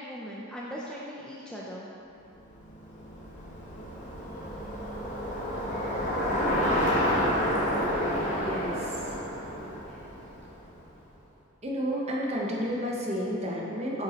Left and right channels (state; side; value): normal; both; correlation 0.25